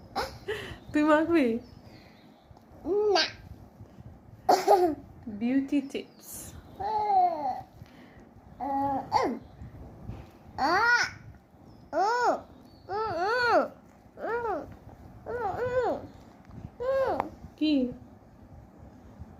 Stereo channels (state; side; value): identical; both; correlation 1.00